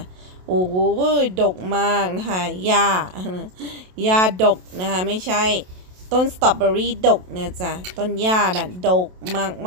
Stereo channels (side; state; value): left; late; 27 ms